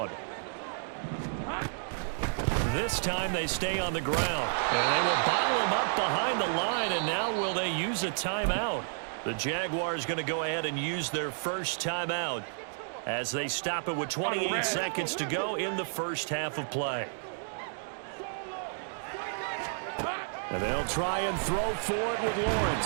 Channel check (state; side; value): silent; left; digital silence